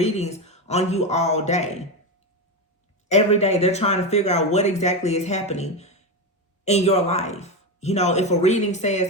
on you all day. Every day they're trying to figure out what exactly is happening in your life. You know, if a reading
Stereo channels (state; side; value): normal; both; correlation 0.14